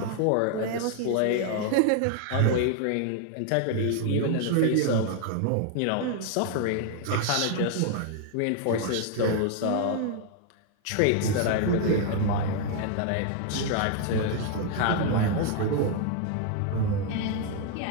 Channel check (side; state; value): both; different; correlation 0.00